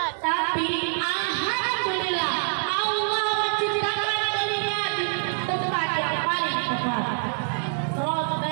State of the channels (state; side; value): silent; left; 60 dB below the other